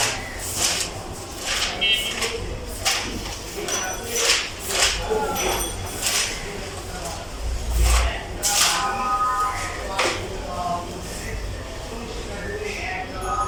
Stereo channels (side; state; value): both; identical; correlation 1.00